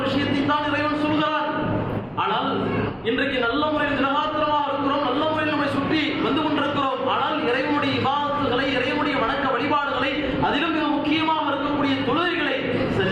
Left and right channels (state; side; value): identical; both; correlation 1.00